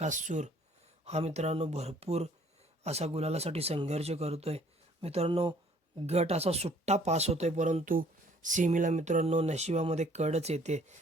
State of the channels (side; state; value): both; normal; correlation 0.58